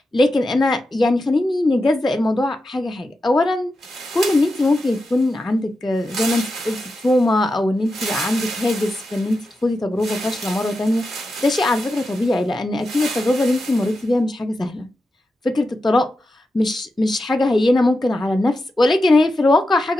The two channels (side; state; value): both; normal; correlation 0.89